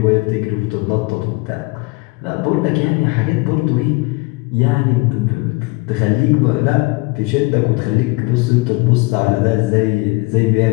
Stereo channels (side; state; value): right; quieter; 25.7 dB